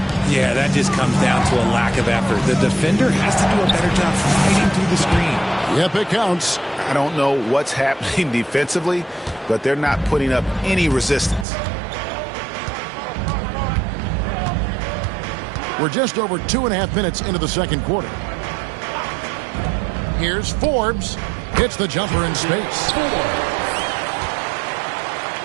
Yeah, that just comes down to a lack of effort. The defender has to do a better job fighting through the screen. Yep, it counts. I don't know what's happening defensively, but they're not putting up any resistance. We're just over 2.5 minutes into the second quarter. Here's Forbes. Hits the jumper in space.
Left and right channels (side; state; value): left; drops out; at 11.5 s